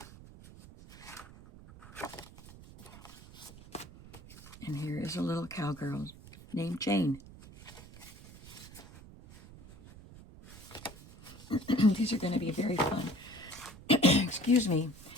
And here is a little cowgirl named Jane. These are going to be very fun. Excuse me.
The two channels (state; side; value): noise; right; rumble, 18 dB below the sound